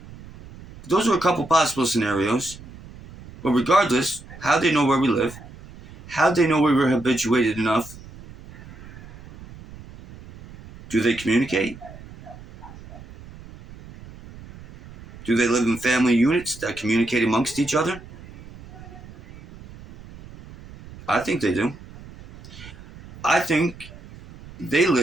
Those are a couple possible scenarios. But regardless, how'd they know where we live? How'd they know we were habituated enough? Do they communicate? Do they live in family units that communicate amongst each other? I think they do. I think they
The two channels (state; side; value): noise; right; rumble, 18 dB below the sound